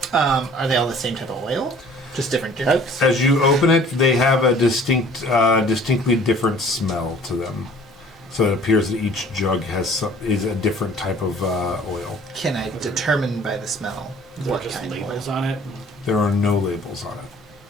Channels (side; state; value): both; normal; correlation 0.51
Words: Are they all the same type of oil? Just different jugs? As you open it, they have a distinctly different smell to them. So it appears that each jug is a different type of oil. Can I determine by the smell Is there what just kind of labels oil? on it? There are no labels on it.